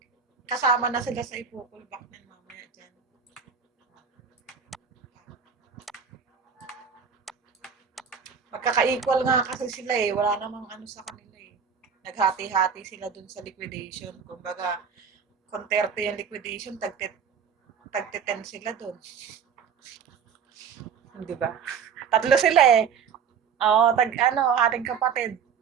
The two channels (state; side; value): quieter; left; 6.7 dB